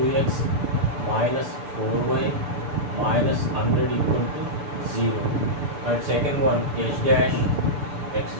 minus 4y minus 100 equal to 0, and second one h dash x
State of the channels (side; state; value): left; late; 6.9 ms